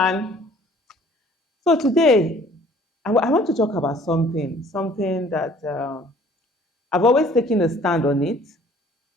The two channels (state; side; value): normal; both; correlation 0.55